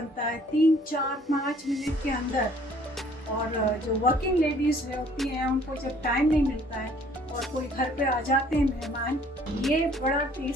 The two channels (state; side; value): normal; both; correlation 0.58